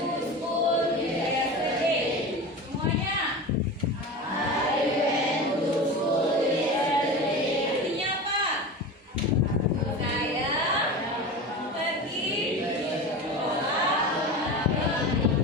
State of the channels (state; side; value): normal; both; correlation 0.29